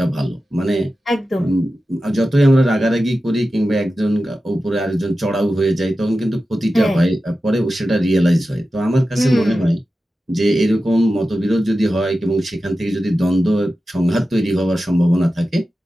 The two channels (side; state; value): both; normal; correlation 0.93